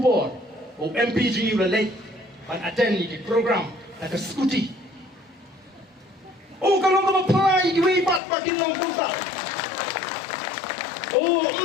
o MPG relate ban attend ni program na ke skuti oh kalau kau apply diwe pat makin lang punta oh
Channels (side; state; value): right; drops out; at 8.2 s